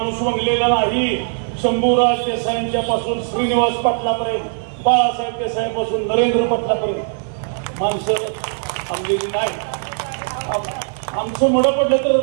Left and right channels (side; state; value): left; silent; digital silence